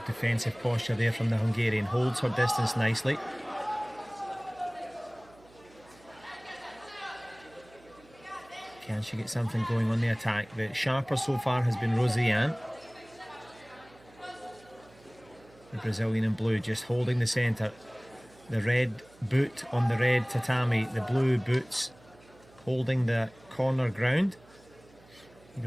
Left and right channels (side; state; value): right; noise; hum, 26 dB below the sound